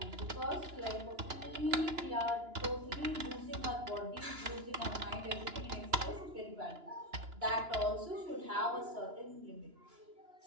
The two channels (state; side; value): late; left; 2.9 ms